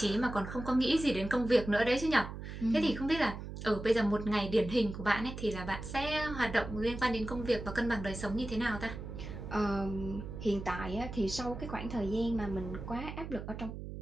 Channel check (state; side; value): noise; right; hum, 9 dB below the sound